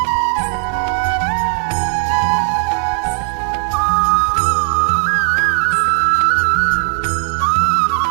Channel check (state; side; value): silent; left; digital silence